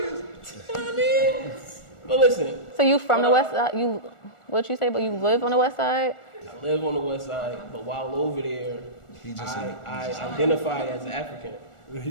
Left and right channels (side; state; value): right; late; 1.4 ms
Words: know what I mean? But listen, So you from the west side? What'd you say? But you live on the west side? I live on the west side, but while over there, I identify as African.